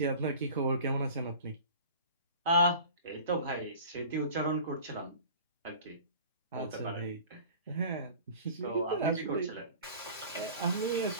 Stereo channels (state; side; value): inverted; both; correlation -0.41